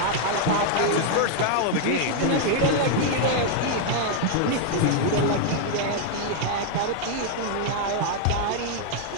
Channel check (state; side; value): different; both; correlation 0.00